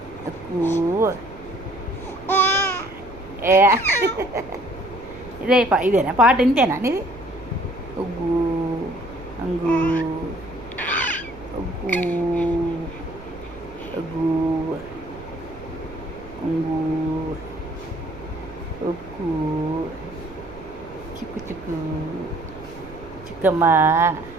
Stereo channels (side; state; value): right; noise; rumble, 17 dB below the sound